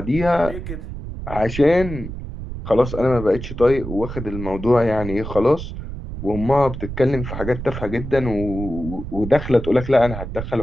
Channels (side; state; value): right; noise; rumble, 8 dB below the sound